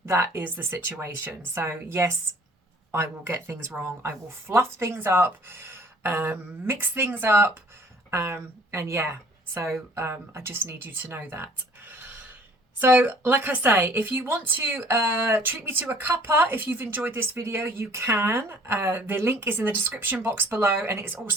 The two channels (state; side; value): normal; both; correlation 0.53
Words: That is the situation. So yes, I will get things wrong. I will fluff things up, mix things up, and yeah, so I just need you to know that. So like I say, if you want to treat me to a cuppa, if you've enjoyed this video, you can. The link is in the description box below, and it's